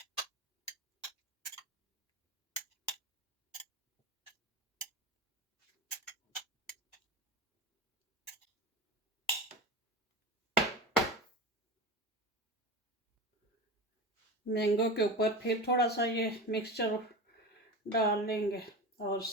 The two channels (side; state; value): both; normal; correlation 0.28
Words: मैंगो के ऊपर फिर थोड़ा सा ये मिक्सचर डाल लेंगे, और